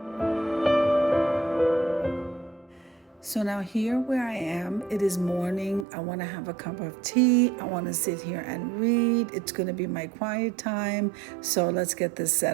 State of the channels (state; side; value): drops out; left; at 5.9 s